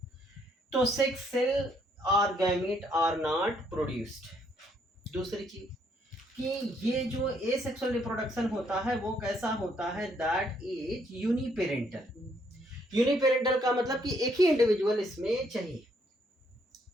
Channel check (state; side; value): normal; both; correlation 0.70